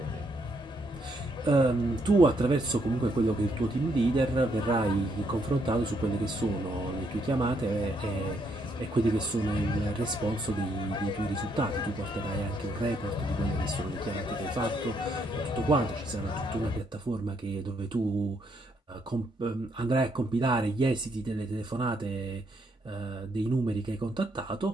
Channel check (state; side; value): normal; both; correlation 0.74